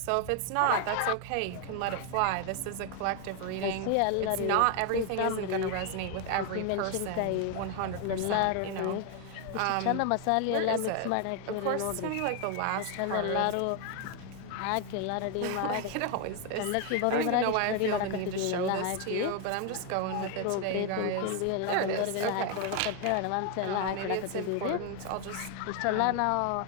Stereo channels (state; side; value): different; both; correlation 0.01